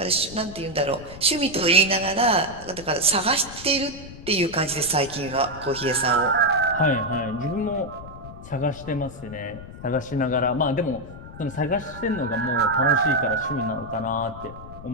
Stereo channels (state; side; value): noise; left; rumble, 15 dB below the sound